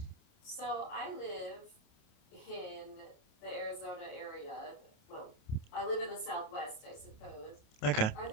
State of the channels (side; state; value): right; late; 28 ms